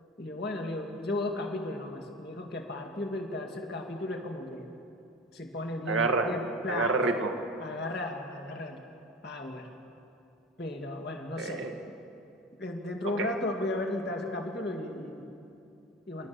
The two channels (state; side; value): normal; both; correlation 0.33